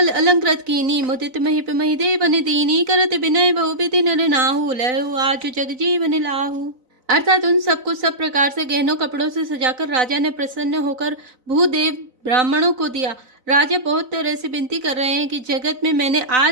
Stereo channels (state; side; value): late; left; 4.0 ms